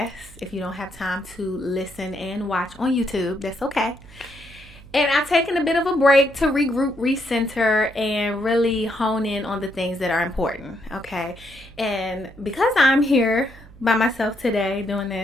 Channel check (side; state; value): right; noise; hum, 21 dB below the sound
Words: If you don't have time to listen and watch on YouTube, that's okay. And I've taken a bit of a break to regroup, recenter, and really hone in on the things that are important, okay? And because I'm here by myself today doing